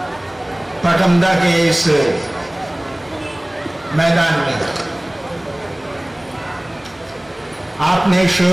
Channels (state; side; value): noise; right; hum, 29 dB below the sound